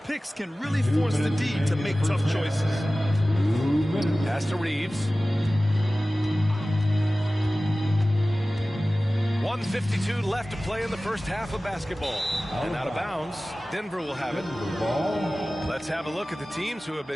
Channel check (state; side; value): normal; both; correlation 0.97